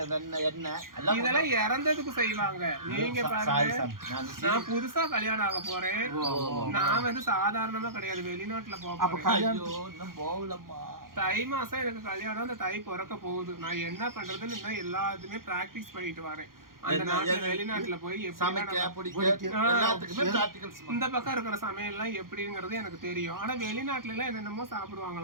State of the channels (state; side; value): late; left; 0.91 ms